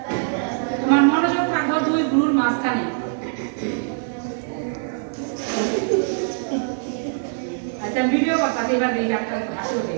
তোমার মনোযোগ থাকবো দুই গুরুর মাঝখানে আচ্ছা ভিডিও কথা এবার দেখি আপনার হাসি ওঠে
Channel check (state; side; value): silent; left; 63 dB below the other